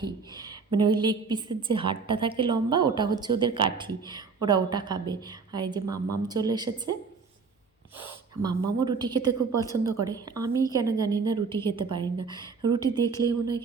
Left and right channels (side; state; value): left; quieter; 5.0 dB